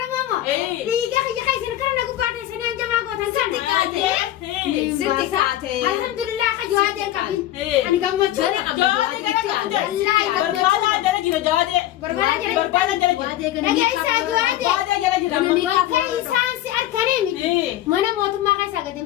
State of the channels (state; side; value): quieter; right; 13.7 dB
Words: dhiiga kiyya keessan kana nagu baate isinii hanjamaa gootan san Sitti kaate. alhamdulillah ka jawaadee qabin ani gammachuu Barbaadaa jala jira jawaadee. Barbaadaa jala jira. nagaa isaa jawaadee Barbaadaa jala jira. bakka isaan si arkanii miti mana mootummaa keessaa gadi